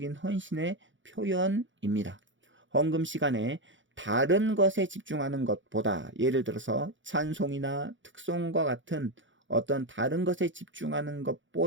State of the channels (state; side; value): late; left; 0.55 ms